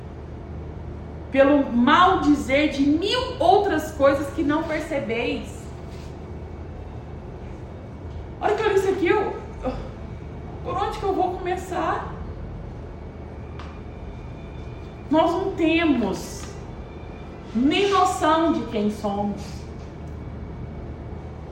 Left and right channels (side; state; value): both; identical; correlation 1.00